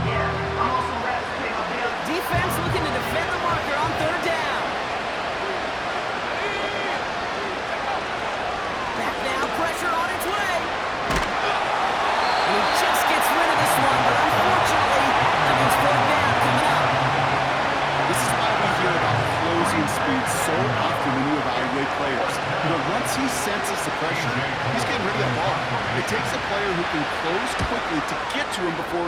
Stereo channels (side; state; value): both; identical; correlation 1.00